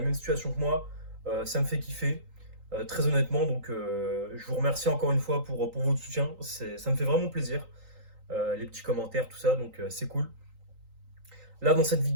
même situation que moi, ça me fait kiffer. Très honnêtement, donc je vous remercie encore une fois pour votre soutien. Ça me fait vraiment plaisir. Les petits commentaires, tout ça, donc c'est cool. Là, dans cette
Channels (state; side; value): late; left; 3.8 ms